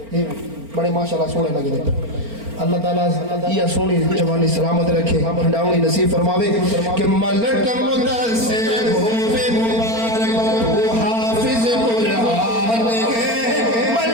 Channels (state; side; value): late; left; 4.4 ms